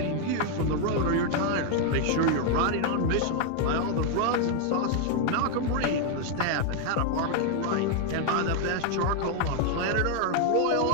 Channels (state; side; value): different; both; correlation 0.00